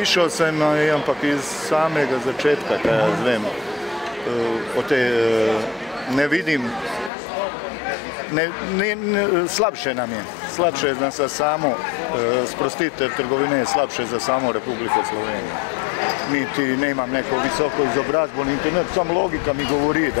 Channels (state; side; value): drops out; right; at 7.1 s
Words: sem, ampak iz samega začetka, kaj jaz vem, o tej ne vidim. Slabše nam je. Slabše je za samo sprostitev trgovine, je slabše za samo Republiko Slovenijo. Niti ne imam neko visoko izobrazbo, niti ne, samo logika mi govori,